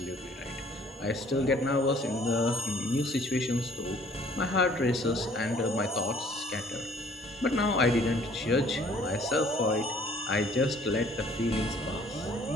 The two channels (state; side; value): normal; both; correlation 0.57